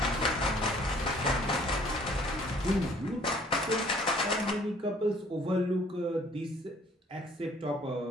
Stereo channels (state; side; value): normal; both; correlation 0.57